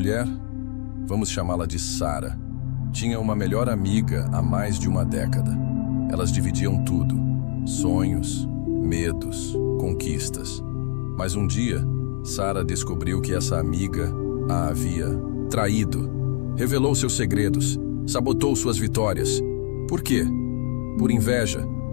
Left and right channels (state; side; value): silent; right; digital silence